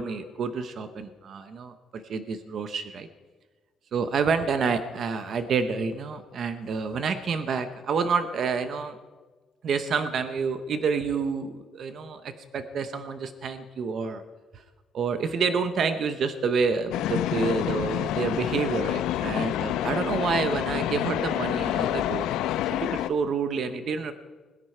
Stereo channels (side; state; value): both; normal; correlation 0.61